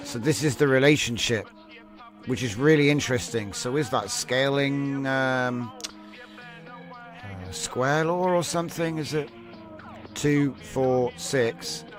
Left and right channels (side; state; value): both; identical; correlation 1.00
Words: so this is the relationship, which is really interesting. So is that scaling square law or something? Is it 2, 4, 6,